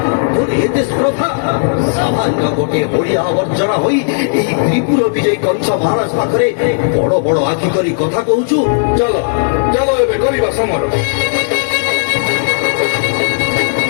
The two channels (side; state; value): right; silent; digital silence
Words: তোর এতে স্পর্ধা সামান্য গোটিଏ ଓଡ଼ିଆ ଆବର୍ଜନା ହୋଇ ଏହି ତ୍ରିପୁର ବିଜୟୀ କଂସ ମହାରାଜ ପାଖରେ ବଡ ବଡ ଆଖି କରି କଥା କହୁଛୁ। ଚାଲ ଚାଲ ଏବେ କରିବା ସମର।